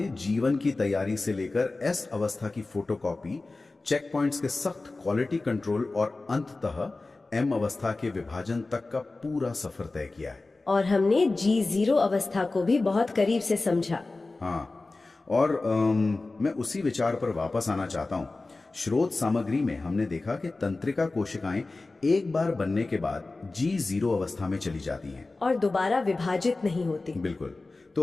जीवन की तैयारी से लेकर एस अवस्था की फोटोकॉपी, चेक पॉइंट्स के सख्त क्वालिटी कंट्रोल और अंततः एम अवस्था के विभाजन तक का पूरा सफर तय किया है। और हमने G0 अवस्था को भी बहुत करीब से समझा। हाँ, और मैं उसी विचार पर वापस आना चाहता हूँ। स्रोत सामग्री में हमने देखा कि तंत्रिका कोशिकाएं एक बार बनने के बाद G0 अवस्था में चली जाती हैं और दोबारा विभाजित नहीं होती। बिल्कुल।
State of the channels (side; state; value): right; quieter; 3.4 dB